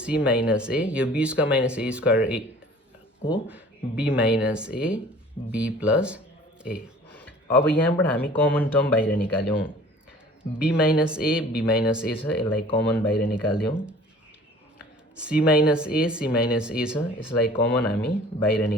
माइनस ए, यो B square minus A square A को B minus A B plus A. अब यहाँबाट हामी कमन टर्म बाहिर निकाल्यौँ, बी माइनस ए छ, यसलाई कमन बाहिर निकाल्यौँ। सी माइनस ए छ, यसलाई कमन हामी बाहिर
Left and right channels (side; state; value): both; normal; correlation 0.48